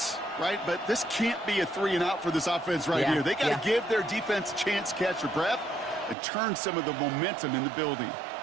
right? But this can't be a 3-and-out for this offense right here. They got to give their defense a chance to catch their breath and turn some of the momentum in the building.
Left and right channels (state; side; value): drops out; left; at 6.2 s